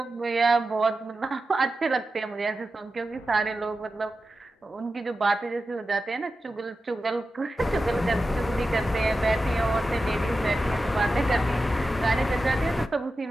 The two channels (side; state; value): both; normal; correlation 0.92